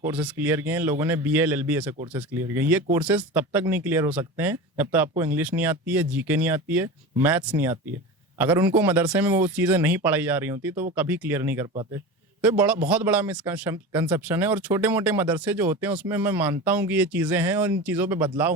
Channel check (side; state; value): both; normal; correlation 0.29